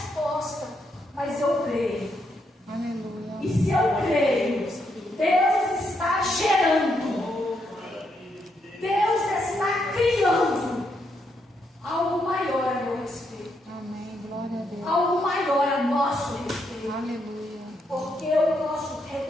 mas eu creio. Aleluia. E se eu creio, Deus está gerando, Deus está criando algo maior a meu respeito, Amém, glória a Deus. algo maior a nosso respeito, Aleluia. porque o nosso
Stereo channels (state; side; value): normal; both; correlation 0.78